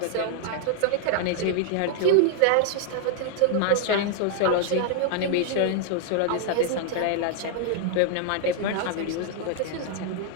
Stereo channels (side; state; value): both; different; correlation 0.00